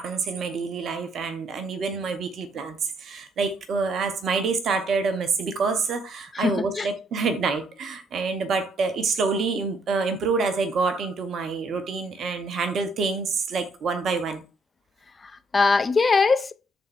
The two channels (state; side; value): normal; both; correlation 0.69